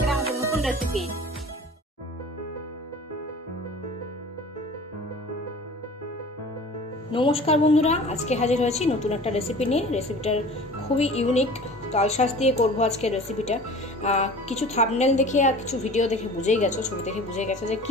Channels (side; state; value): both; normal; correlation 0.42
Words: আমাদের নতুন রেসিপি। নমস্কার বন্ধুরা, আজকে হাজির হয়েছি নতুন একটা রেসিপি নিয়ে। রেসিপিটার খুবই ইউনিক, তালশাঁস দিয়ে করব আজকে রেসিপিটা। কিছু থাম্বনেল দেখে আর কিছু ভিডিও দেখে বুঝেই গেছো, ছবি দেখে বুঝে গেছো যে